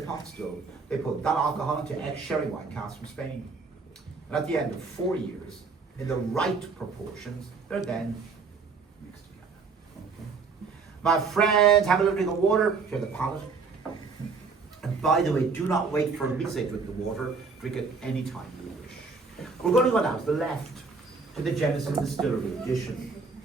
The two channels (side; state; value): left; quieter; 4.7 dB